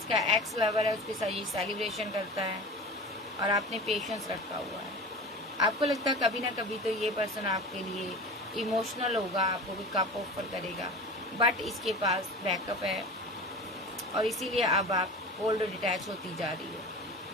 एक्स लवर है, उसके साथ ये सेलिब्रेशन करता है और आपने पेशेंस रखा हुआ है। आपको लगता है कभी ना कभी तो ये पर्सन आपके लिए इमोशनल होगा, आपको भी कप ऑफर करेगा, बट इसके पास बैकअप है और इसीलिए अब आप कोल्ड डिटैच होती जा रही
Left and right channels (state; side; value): normal; both; correlation 0.34